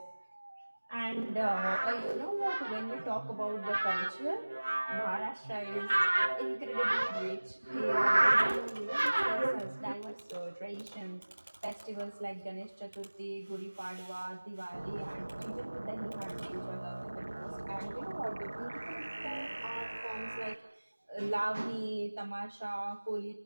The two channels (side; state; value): both; inverted; correlation -1.00